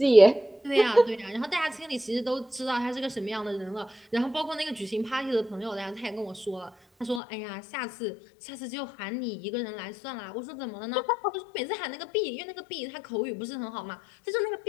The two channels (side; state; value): right; drops out; at 7.2 s